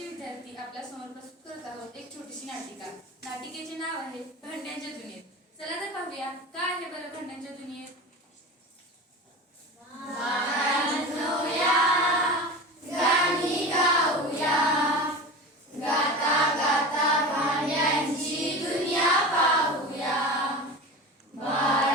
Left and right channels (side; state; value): both; normal; correlation 0.30